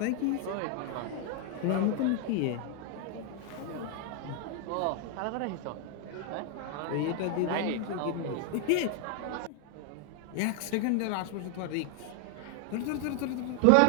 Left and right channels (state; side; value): different; both; correlation 0.00